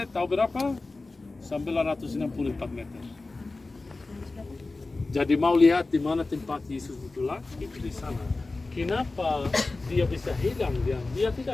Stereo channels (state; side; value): quieter; right; 3.4 dB